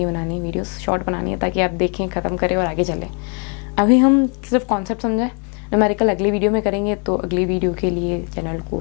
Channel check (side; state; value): right; quieter; 38.4 dB